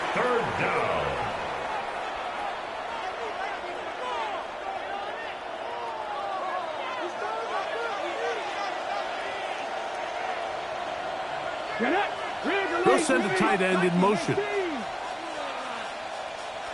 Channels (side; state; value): both; identical; correlation 1.00